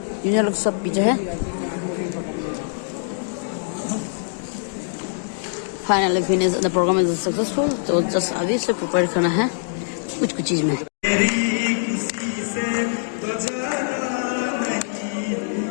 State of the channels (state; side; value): silent; right; digital silence